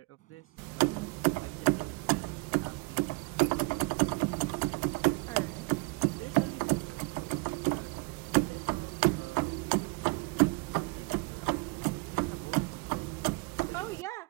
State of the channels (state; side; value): quieter; left; 27.0 dB